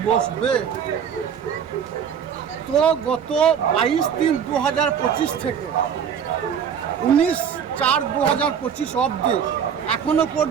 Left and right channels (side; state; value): left; quieter; 7.7 dB